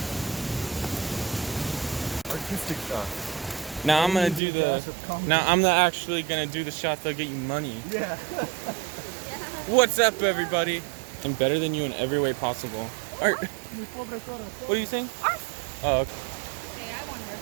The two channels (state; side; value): drops out; left; at 4.4 s